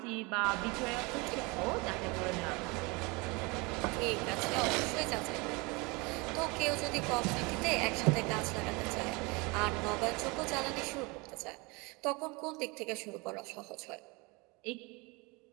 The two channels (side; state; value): left; quieter; 27.0 dB